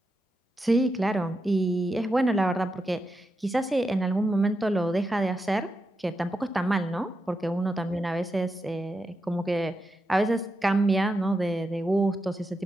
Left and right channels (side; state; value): both; normal; correlation 0.87